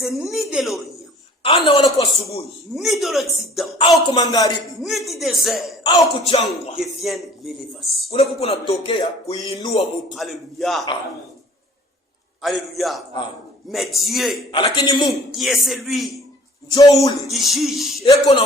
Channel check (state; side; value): normal; both; correlation 0.51